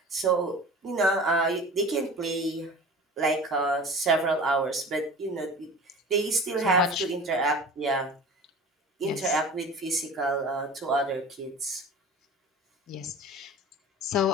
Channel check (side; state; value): both; normal; correlation 0.38